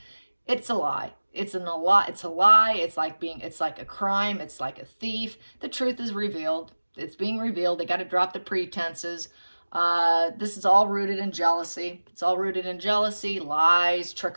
It's a lie. It's a lie. It's like a crime. It's like a thief. The truth is revealed. It's being revealed. They got to drop the pretenses. This is all rooted in jealousy. It's all rooted in jealousy, lies,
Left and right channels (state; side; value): inverted; both; correlation -1.00